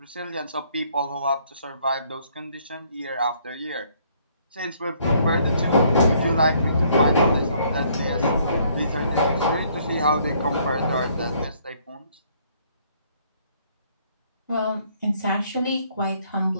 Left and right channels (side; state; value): both; inverted; correlation -0.65